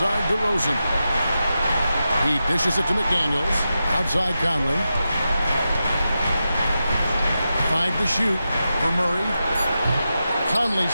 DeRozan. He dishes it to McDaniels. Outside Conley. 5 to shoot for Murray.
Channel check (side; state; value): both; inverted; correlation -0.90